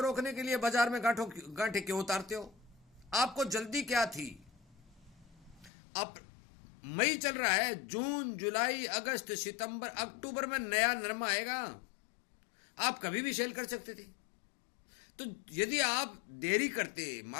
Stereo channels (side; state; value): right; drops out; at 5.7 s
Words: रोकने के लिए बाजार में गांठे क्यों उतारते हो? आपको जल्दी क्या थी? अब मई चल रहा है, जून, जुलाई, अगस्त, सितंबर, अक्टूबर में नया नरमा आएगा, आप कभी भी सेल कर सकते थे। तो यदि आप देरी करते,